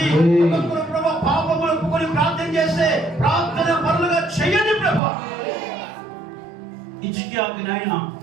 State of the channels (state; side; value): drops out; left; at 5.0 s